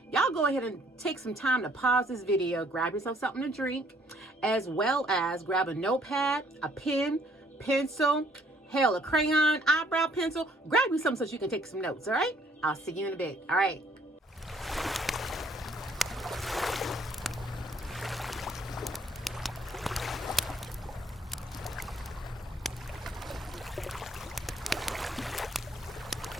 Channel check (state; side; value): normal; both; correlation 0.63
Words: Y'all go ahead and take some time to pause this video, grab yourself something to drink, as well as grab a notepad, a pen, pencil, hell, a crayon, eyebrow pencil. Grab you something so you can take some notes, all right? I'll see you in a bit. All right.